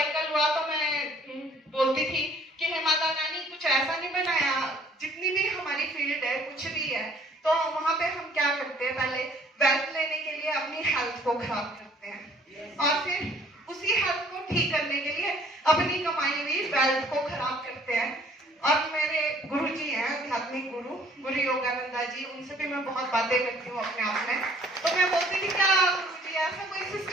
हुआ तो मैं बोलती थी कि हे माता रानी कुछ ऐसा नहीं बनाया, जितनी भी हमारी फील्ड है कुछ भी है तो वहां पे हम क्या करते हैं, पहले वेल्थ लेने के लिए अपनी हेल्थ को खराब करते हैं, और फिर उसी हेल्थ को ठीक करने के लिए अपनी कमाई हुई वेल्थ को खराब करते हैं। और मेरे गुरु जी हैं, आध्यात्मिक गुरु योगानंदा जी, उनसे भी मैं बहुत बातें करती हूँ अपने आप में। तो मैं बोलती थी क्या गुरु जी ऐसा कोई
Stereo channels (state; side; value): normal; both; correlation 0.57